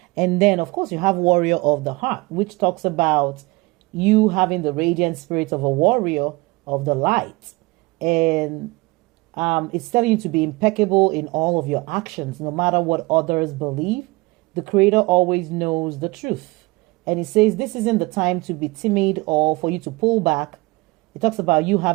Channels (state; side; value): quieter; left; 23.5 dB